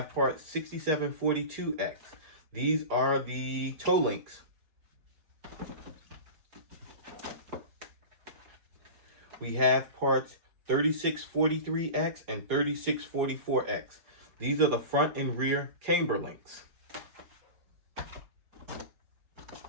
part 6742X. These are the toe links. We have parts 3643X and 3644X. These are the front and rear camber links.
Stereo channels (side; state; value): left; late; 4.3 ms